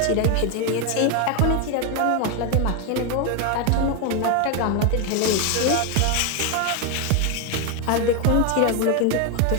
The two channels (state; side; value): different; both; correlation 0.01